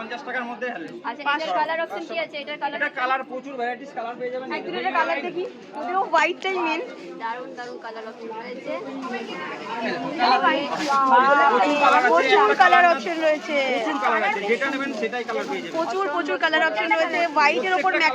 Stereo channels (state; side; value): identical; both; correlation 1.00